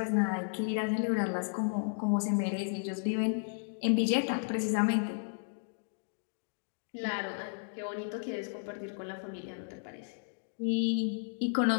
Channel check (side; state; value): right; silent; digital silence